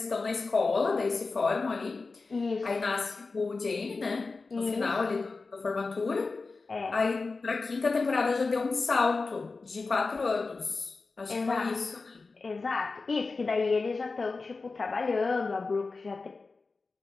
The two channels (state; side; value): quieter; right; 4.0 dB